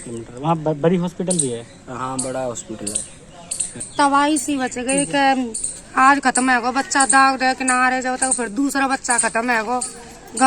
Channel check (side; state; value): both; identical; correlation 1.00